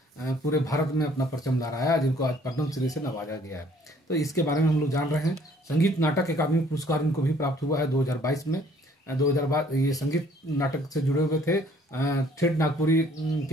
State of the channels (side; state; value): both; normal; correlation 0.59